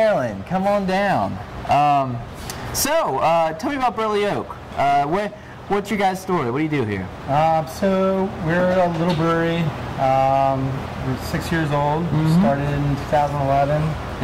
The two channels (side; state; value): both; identical; correlation 1.00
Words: Come on down. Tell me about Burley Oak. What's your guys' story? What do you do here? So we're a little brewery. We're 6 years old. We started in 2011.